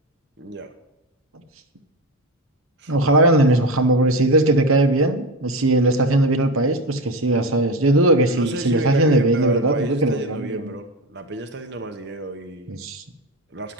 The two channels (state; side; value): normal; both; correlation 0.21